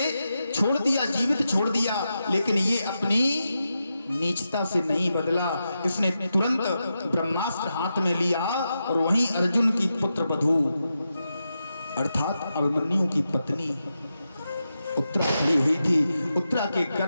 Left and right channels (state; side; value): inverted; both; correlation -0.88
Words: छोड़ दिया, जीवित छोड़ दिया, लेकिन ये अपनी नीचता से नहीं बदला। इसने तुरंत ब्रह्मास्त्र हाथ में लिया और वहीं अर्जुन की पुत्र वधू अर्थात अभिमन्यु की पत्नी उत्तरा खड़ी हुई थी। उत्तरा के